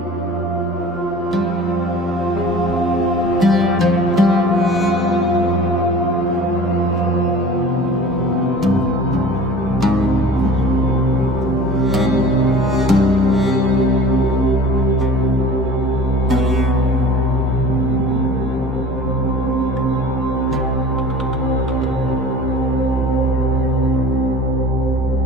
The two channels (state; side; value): normal; both; correlation 0.42